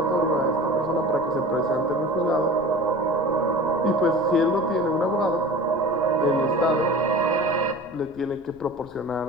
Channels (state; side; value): noise; left; rumble, 25 dB below the sound